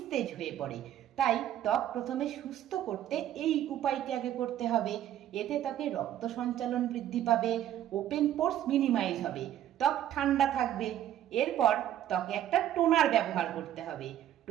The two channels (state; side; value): quieter; left; 11.7 dB